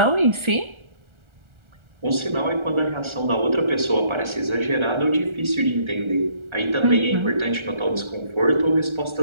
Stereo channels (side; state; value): left; late; 1.4 ms